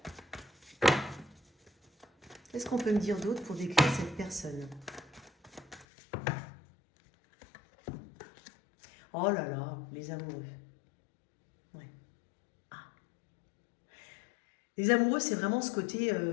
Qu'est-ce qu'on peut me dire d'autre pour décrire cette personne? Oh là là, les amoureux. Ouais. Ah. Les amoureux, c'est vraiment ce côté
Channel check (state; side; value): drops out; right; at 5.9 s